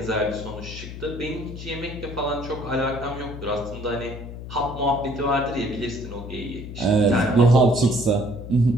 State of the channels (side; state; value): left; noise; hum, 10 dB below the sound